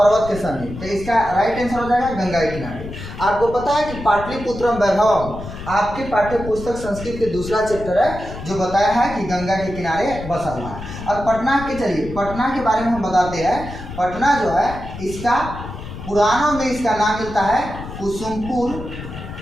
के समीप। तो इसका राइट आंसर हो जाएगा गंगा के किनारे। आपको पता है कि पाटलिपुत्रम वैभवम आपके पाठ्य पुस्तक संस्कृत के दूसरा चैप्टर है जो बताया है कि गंगा के किनारे बसा हुआ है। अब पटना के, चलिए पटना के बारे में हम बताते हैं। पटना जो है इसका पुराणों में इसका नाम मिलता है कुसुमपुर,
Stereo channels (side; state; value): left; noise; rumble, 11 dB below the sound